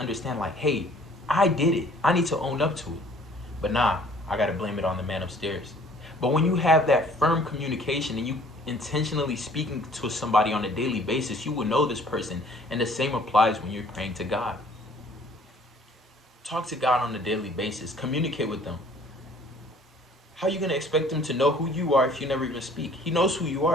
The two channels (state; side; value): normal; both; correlation 0.55